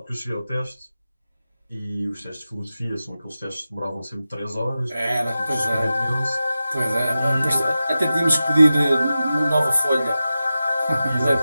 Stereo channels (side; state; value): both; inverted; correlation -0.93